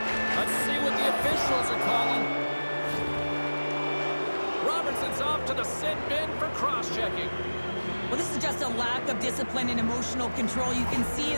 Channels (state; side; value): inverted; both; correlation -1.00